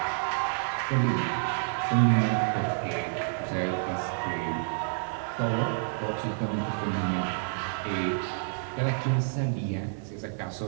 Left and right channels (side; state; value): left; silent; digital silence